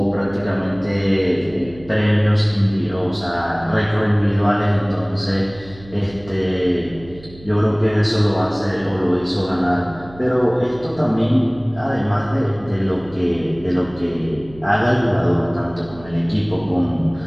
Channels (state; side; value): noise; right; hum, 20 dB below the sound